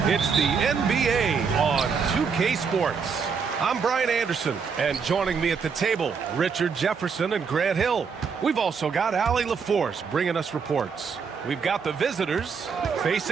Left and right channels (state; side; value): quieter; left; 5.8 dB